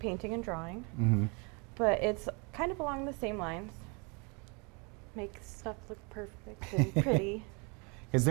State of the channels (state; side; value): quieter; left; 31.8 dB